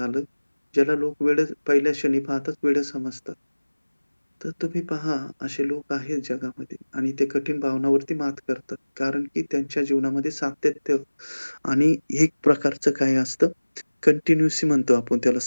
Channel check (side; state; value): both; inverted; correlation -1.00